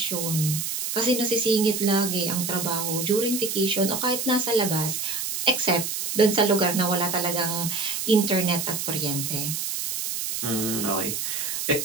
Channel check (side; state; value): right; noise; hiss, 3 dB below the sound